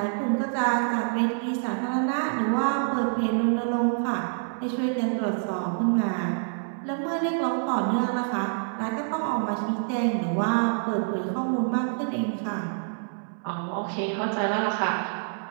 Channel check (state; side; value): silent; left; 60 dB below the other